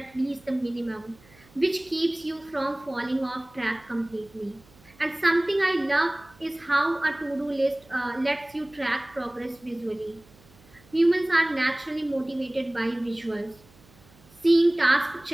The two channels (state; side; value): noise; right; hum, 27 dB below the sound